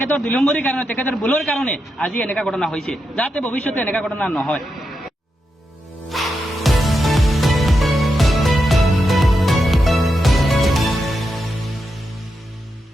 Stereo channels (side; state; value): both; normal; correlation 0.86